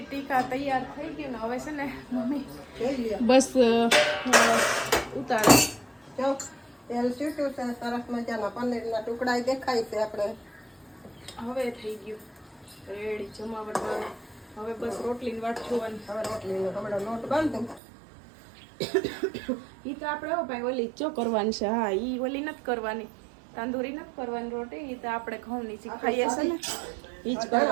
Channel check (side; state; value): left; drops out; at 17.8 s